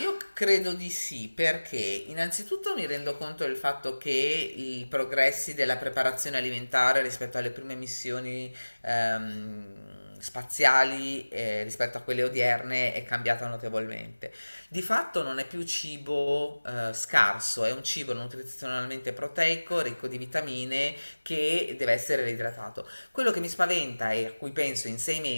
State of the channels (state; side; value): inverted; both; correlation -1.00